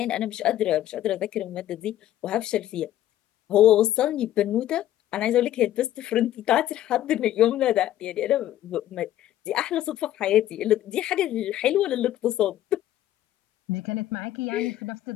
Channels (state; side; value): quieter; right; 12.9 dB